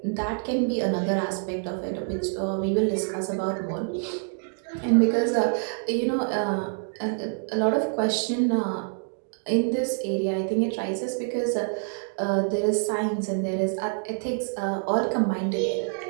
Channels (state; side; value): silent; left; 58 dB below the other